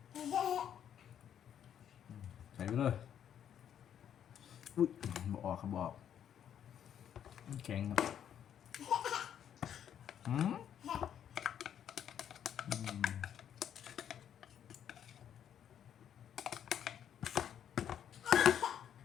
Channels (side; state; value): right; quieter; 9.4 dB